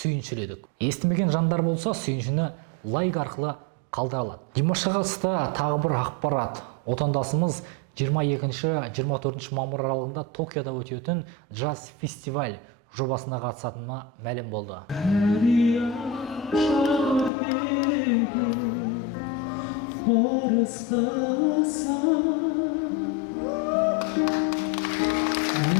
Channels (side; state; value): right; drops out; at 17.3 s